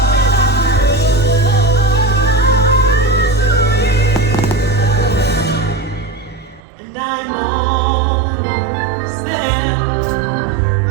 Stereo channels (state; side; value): drops out; left; at 6.6 s